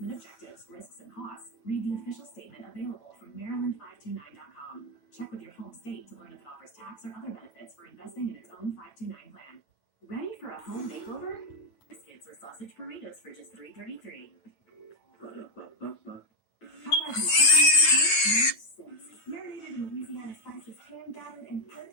objectives, risks, and costs, read the official statement available from Maryland529.com. tax or other benefits for investing in its own 529 plan. Ready for a home makeover? Biscuits or sausage burritos for just $3.33. Ba-da-ba-ba-ba. Popeyes and chicken make no sense. Marinated in Louisiana spices, hand battered and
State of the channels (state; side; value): late; right; 9.1 ms